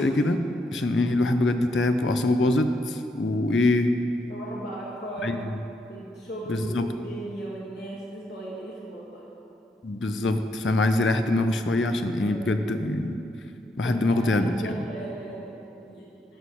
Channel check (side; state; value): both; normal; correlation 0.77